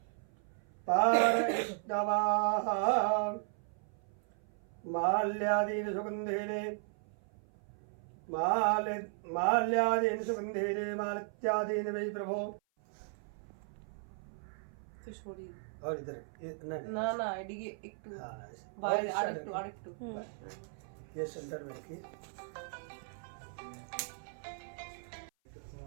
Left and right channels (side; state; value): left; silent; 53 dB below the other